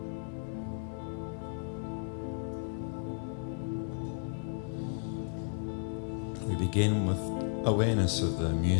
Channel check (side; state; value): right; silent; 55 dB below the other